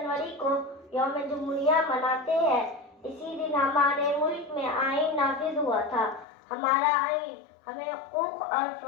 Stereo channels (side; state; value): right; drops out; at 6.2 s